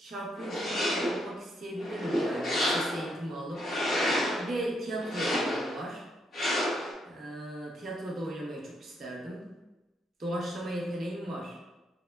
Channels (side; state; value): both; normal; correlation 0.76